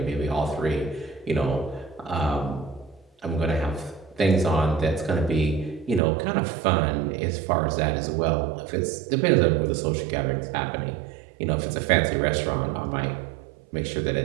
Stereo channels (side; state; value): left; drops out; at 6.0 s